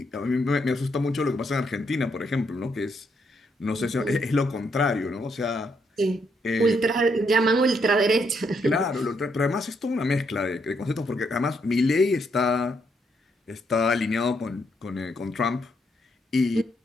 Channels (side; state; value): both; normal; correlation 0.76